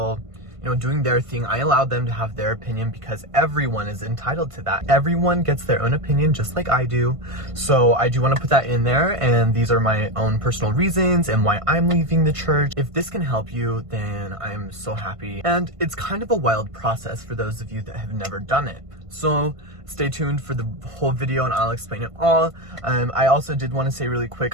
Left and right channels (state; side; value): late; left; 1.5 ms